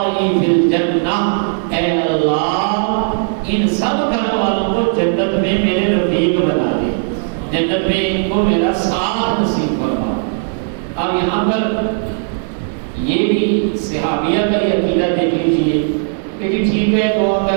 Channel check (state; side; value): silent; left; 63 dB below the other